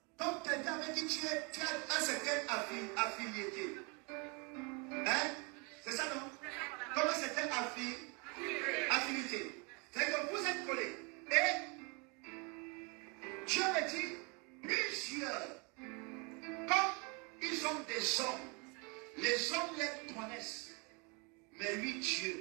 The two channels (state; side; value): quieter; left; 31.7 dB